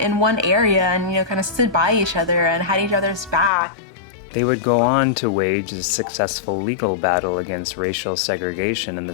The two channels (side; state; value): right; drops out; at 3.5 s